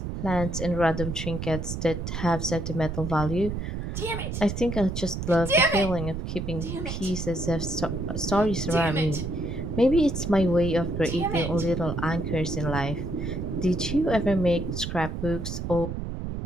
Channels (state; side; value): noise; right; rumble, 5 dB below the sound